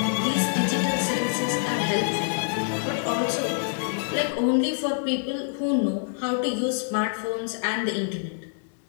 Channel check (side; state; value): right; silent; digital silence